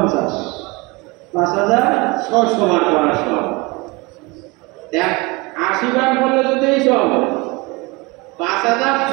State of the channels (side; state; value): left; quieter; 25.1 dB